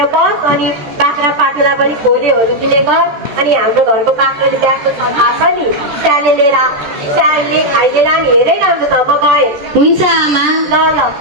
बस अनि बाख्रा पाटुला पनि खोलेहरू दिने गर। अनि हाम्रो घरको बाख्राले ब्याएको छ थाहा छ नि, स्यालले खाइदिएर नि हेरै राम्रो छ। म गएँ। हुन्छ आमा। ल ल।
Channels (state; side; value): late; left; 13 ms